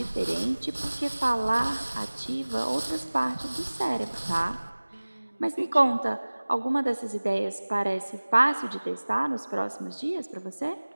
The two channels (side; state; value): both; inverted; correlation -1.00